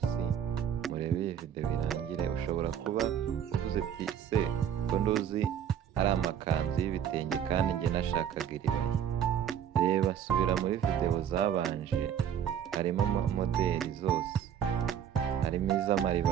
murebe iyi video birangire. Ushobora kuba uvuze ati se ko nduzi ari amakanzu y'ibitenge kandi njye nashakaga iribaya. Reba subira muri video zabanje, harimo modeli zose, harimo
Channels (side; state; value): left; quieter; 9.1 dB